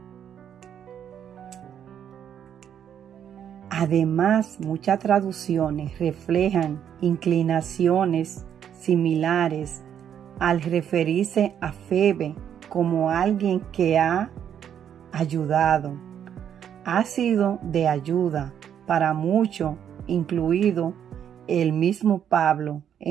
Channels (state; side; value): quieter; left; 9.1 dB